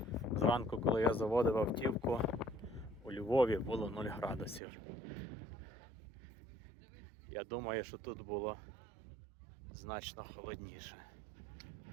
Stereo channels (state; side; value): drops out; left; at 4.6 s